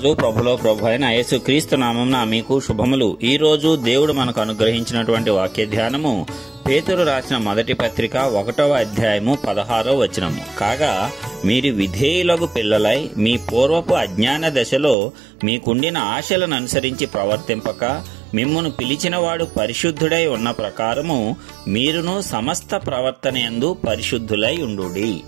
ప్రభులో ప్రభు అయిన యేసుక్రీస్తు నామమున మీకు శుభములు. ఈ రోజు దేవుడు మనకు అనుగ్రహించినటువంటి వాక్య ధ్యానము పేతురు రాసిన మొదటి పత్రిక 1వ అధ్యాయము 16వ వచనము. కాగా మీరు విధేయులకు పిల్లలై మీ పూర్వపు అజ్ఞాన దశలో మీకుండిన ఆశలను అనుసరించి ప్రవర్తింపక మిమ్మును పిలిచినవాడు పరిశుద్ధుడై ఉన్న ప్రకారము మీరును సమస్త ప్రవర్తనయందు పరిశుద్ధులై ఉండుడి.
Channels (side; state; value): left; drops out; at 15.0 s